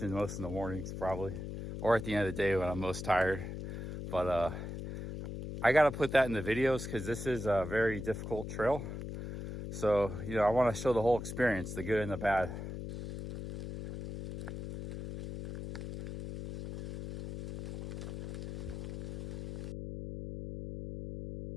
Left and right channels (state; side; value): noise; left; hum, 7 dB below the sound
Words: most in the mornings probably, or at the end of the day when I'm most tired. But I gotta put that in the videos because this is a very difficult trail. So, you know, I want to show the whole experience, the good and the bad.